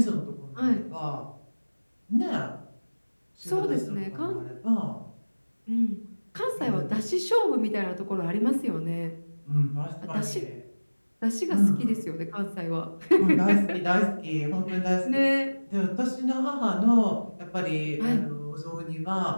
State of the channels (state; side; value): inverted; both; correlation -1.00